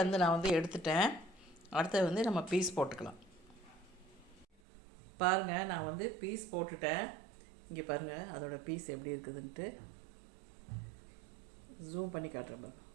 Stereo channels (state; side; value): drops out; left; at 4.5 s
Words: நான் வந்து எடுத்துட்டேன். அடுத்தது வந்து நம்ம பீஸ் போட்டுக்கலாம். பாருங்கள், நான் வந்து பீஸ் போட்டுட்டேன். இங்கே பாருங்கள் அதோடய பீஸ் எப்படி இருக்குதுன்ட்டு ஜூம் பண்ணி காட்டுறேன் பாருங்கள்.